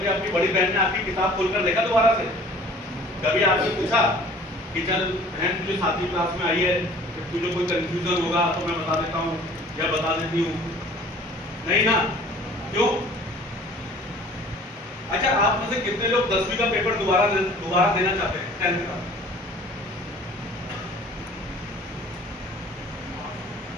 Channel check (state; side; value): normal; both; correlation 0.49